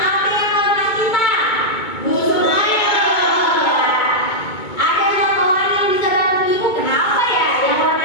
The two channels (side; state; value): right; late; 2.2 ms